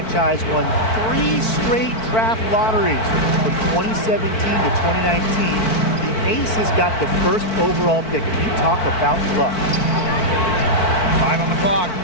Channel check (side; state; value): right; late; 4.5 ms